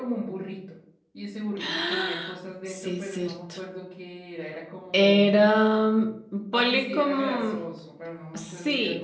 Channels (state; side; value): identical; both; correlation 1.00